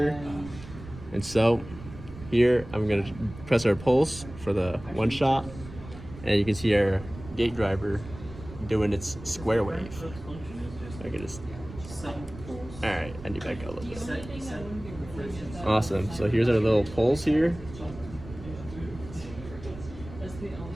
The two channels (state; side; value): noise; right; rumble, 15 dB below the sound